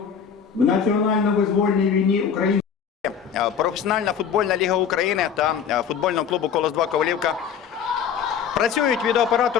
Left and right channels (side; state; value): right; quieter; 7.5 dB